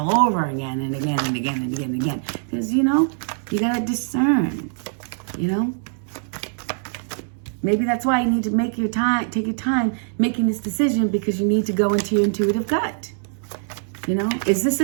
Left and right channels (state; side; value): silent; left; 64 dB below the other